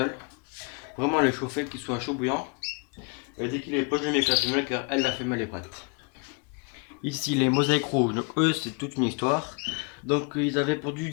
Vraiment le chauffer, qu'il soit chaud bouillant. Et dès qu'il est pas, je vais mettre la femelle car elle, la femelle est prête. Ici les mosaïques rouges, donc eux c'est toute une histoire. Donc ils avaient pondu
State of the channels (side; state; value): right; quieter; 34.4 dB